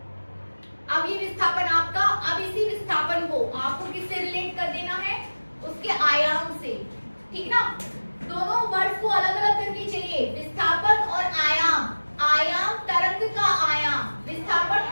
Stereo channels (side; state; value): both; inverted; correlation -1.00